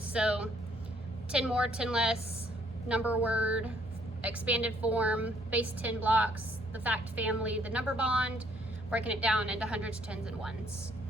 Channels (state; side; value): normal; both; correlation 0.65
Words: So 10 more, 10 less, number word, expanded form, base 10 blocks, the fact family, the number bond, breaking it down into hundreds, tens, and ones.